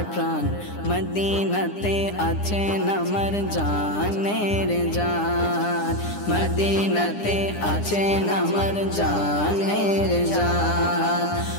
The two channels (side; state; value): right; late; 9.9 ms